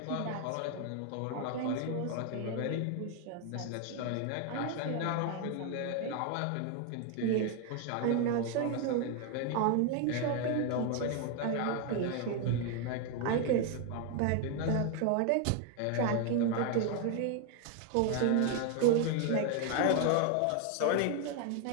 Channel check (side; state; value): both; different; correlation 0.01